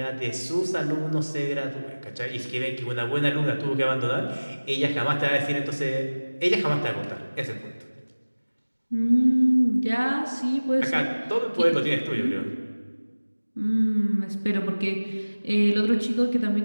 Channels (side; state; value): both; inverted; correlation -1.00